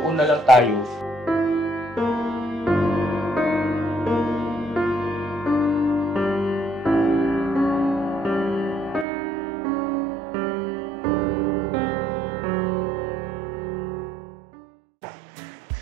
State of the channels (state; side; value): drops out; left; at 9.1 s